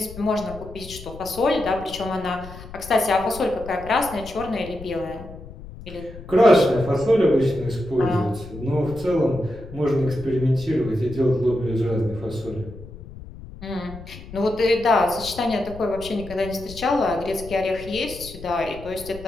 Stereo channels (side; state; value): left; noise; rumble, 15 dB below the sound